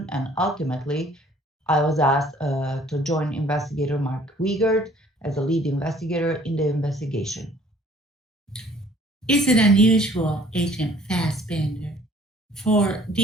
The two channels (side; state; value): both; normal; correlation 0.56